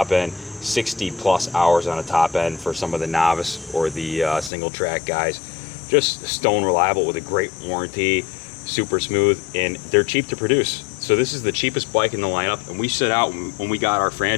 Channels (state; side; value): drops out; right; at 4.5 s